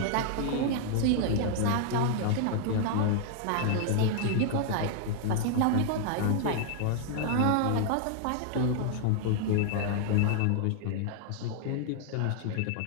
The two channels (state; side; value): different; both; correlation -0.01